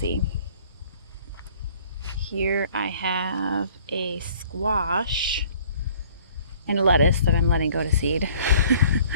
Here I have a squash and a lettuce that I'm letting go to seed.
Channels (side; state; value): both; inverted; correlation -0.55